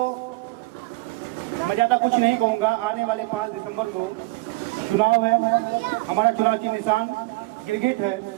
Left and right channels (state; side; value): quieter; left; 22.9 dB